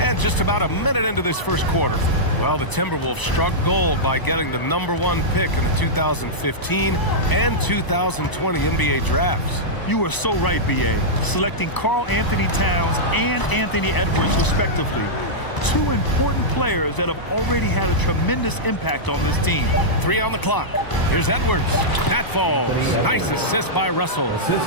just about a minute into this first quarter. Well, the Timberwolves struck gold by getting the #1 pick in the 2015 and 2020 NBA drafts. You are so right, B.A. Selecting Karl Anthony Towns and Anthony Edwards, respectively. Two important players that have already had a tremendous impact on this team. 3 on the clock. Here's Edwards. That falls. Nice assist by Russell.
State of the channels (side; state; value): right; late; 1.0 ms